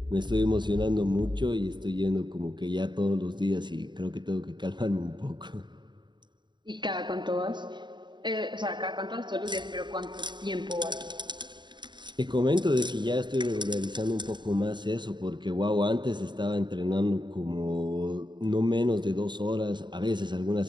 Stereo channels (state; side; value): late; left; 0.22 ms